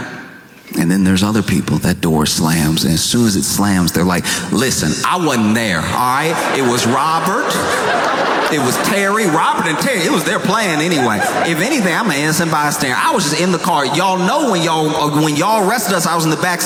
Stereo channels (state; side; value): identical; both; correlation 1.00